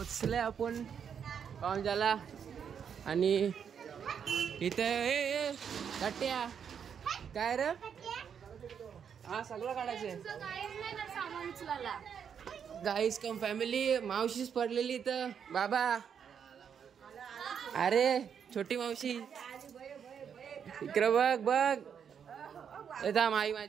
आपण पाहुणचाला आणि इथे गट्ट्या काय रे. हा सगळं काढायचंय. गाईस कम फॅमिली. मावशीच पडलेली इथं बाबा. अरे छोटी मावशी इकडं बघ बघ. येता आई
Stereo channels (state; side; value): quieter; left; 7.6 dB